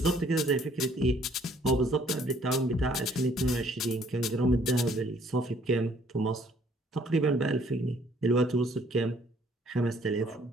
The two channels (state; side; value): normal; both; correlation 0.62